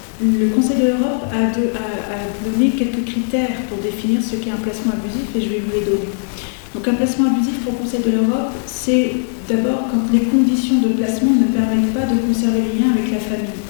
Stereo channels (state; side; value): silent; right; digital silence